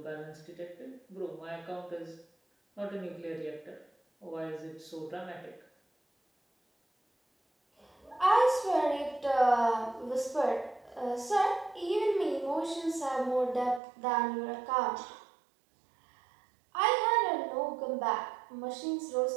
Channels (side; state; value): left; drops out; at 13.8 s